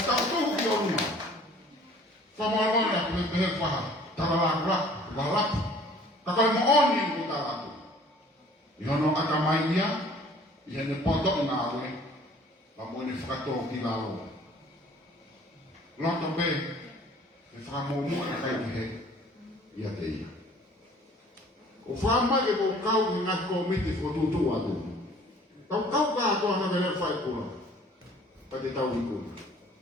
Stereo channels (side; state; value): both; normal; correlation 0.53